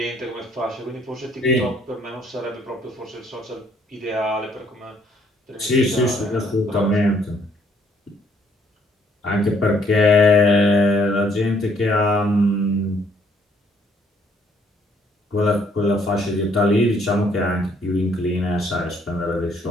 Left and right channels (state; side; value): normal; both; correlation 0.66